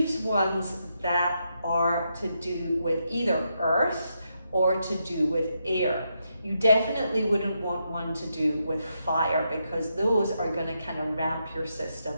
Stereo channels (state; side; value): inverted; both; correlation -0.82